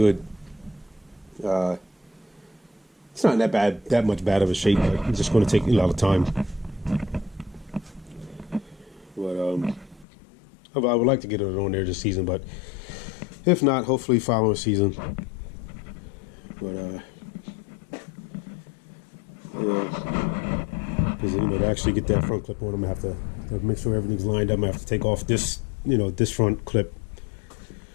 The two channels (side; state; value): right; drops out; at 10.1 s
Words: It's not that much bad of a shape, but it's just going to take a lot of time. But I would like to get it on there this season, but if not, hopefully following season. But because to actually get that front clip on, I'm gonna have to make sure everything's lined up. I'm gonna have to take off this this front clip